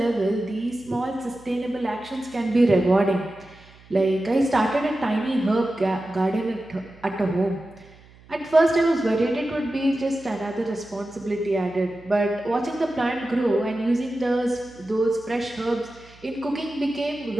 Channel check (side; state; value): right; noise; hum, 25 dB below the sound